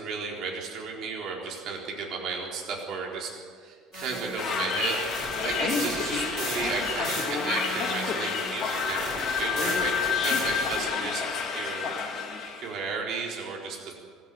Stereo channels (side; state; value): both; normal; correlation 0.48